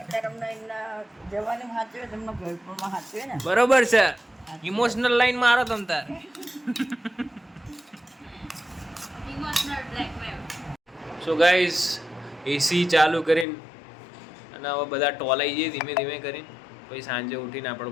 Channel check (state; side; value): drops out; right; at 13.5 s